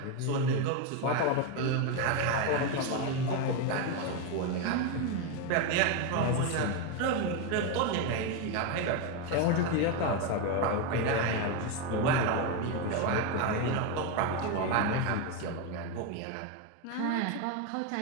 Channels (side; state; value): both; different; correlation 0.03